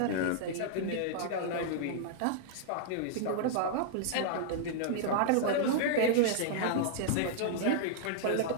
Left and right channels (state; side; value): different; both; correlation -0.02